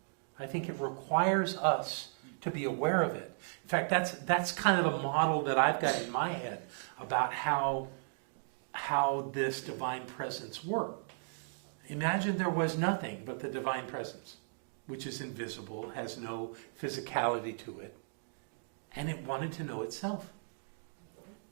I think it requires us to be aware of it. In fact, that's kind of a model that I've got in my head about how this divine presence worked. Imagine there was nothing but the divine presence, which is invisible, has no physicality to it, and it wanted to know itself.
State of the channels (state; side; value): silent; left; digital silence